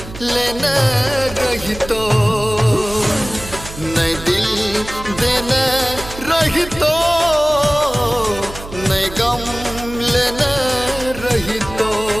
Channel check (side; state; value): right; noise; hum, 13 dB below the sound